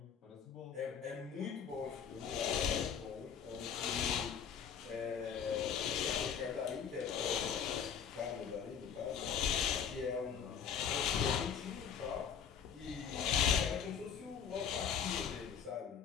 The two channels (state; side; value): quieter; right; 7.7 dB